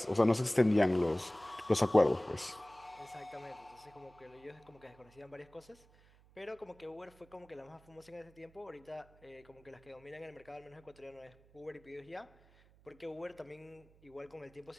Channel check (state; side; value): noise; right; hum, 27 dB below the sound